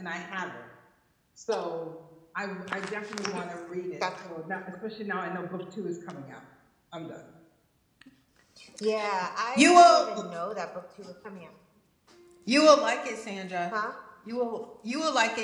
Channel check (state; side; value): identical; both; correlation 1.00